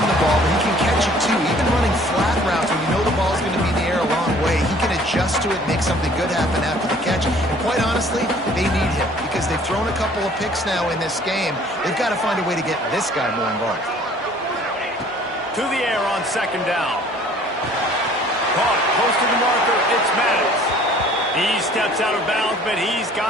the ball, but he can catch it too. Even running flat routes when you know the ball's going to be in the air a long way, he can adjust to it, make something good happen after the catch. And quite honestly, they need him because they've thrown a couple of picks now in this game. They've got to find a way to get this guy more involved. To the air on 2nd down. Caught close to the marker, it's Maddox. He steps out of bounds, but he's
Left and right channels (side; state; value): both; normal; correlation 0.54